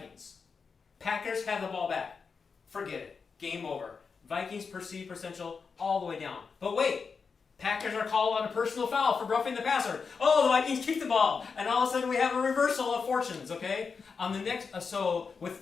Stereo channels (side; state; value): right; quieter; 5.3 dB